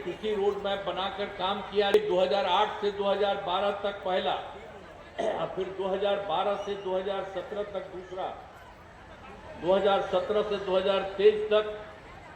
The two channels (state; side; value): identical; both; correlation 1.00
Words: रोड मैप बनाकर काम किया। 2008 से 2012 तक पहला, फिर 2012 से 2017 तक दूसरा, 2017 से 2023 तक